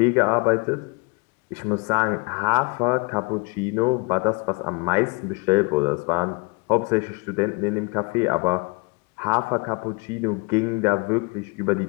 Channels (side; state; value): right; quieter; 29.7 dB